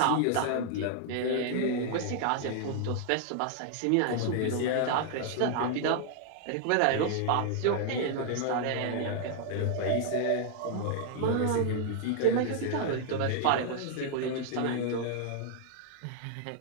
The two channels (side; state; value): both; different; correlation 0.00